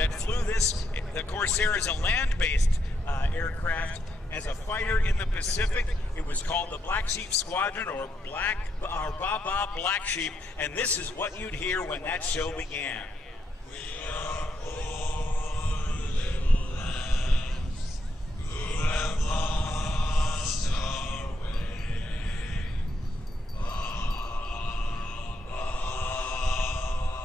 flew this. The Corsair is a land-based aircraft. As a fighter in the Pacific, it was called the Black Sheep Squadron, or Baba Black Sheep, and this is what you'd hear when that show began. We are poor little lambs who have lost our way.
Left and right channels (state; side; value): normal; both; correlation 0.79